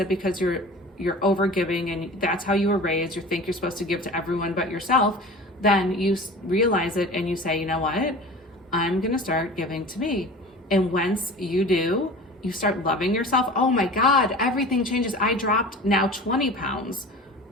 because you're overgiving and that's how you were raised, you think you're supposed to give to everyone but yourself, then you realize it and you say, you know what? I'm gonna start giving to me. And once you do, you start loving yourself. Oh my God, everything changes. I dropped now 20 pounds.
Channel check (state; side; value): normal; both; correlation 0.38